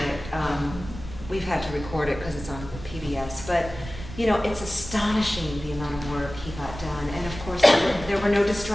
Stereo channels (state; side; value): noise; right; rumble, 12 dB below the sound